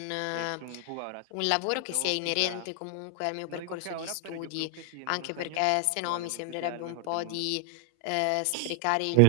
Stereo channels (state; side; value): different; both; correlation 0.00